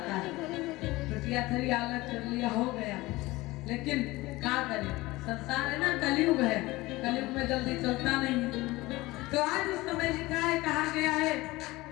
है, टुटिया थरी अलग कर लिया हो गया, लेकिन क्या करें, संसार है ना, कलयुग है, कलयुग में जल्दी चलता नहीं। तो आज उस समय लिखा है, कहा गया है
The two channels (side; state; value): right; quieter; 20.0 dB